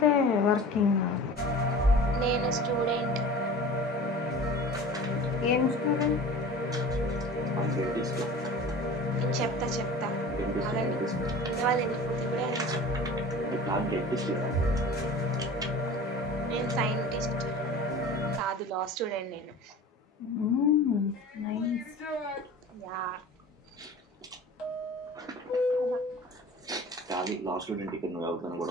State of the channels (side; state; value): both; normal; correlation 0.39